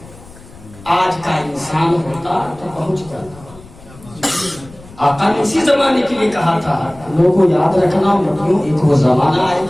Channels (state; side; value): noise; left; rumble, 21 dB below the sound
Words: آج کا انسان ہوتا تو پہنچ جاتا آقا نے اسی زمانے کے لیے کہا تھا لوگوں یاد رکھنا مطلب ایک وہ زمانہ آئے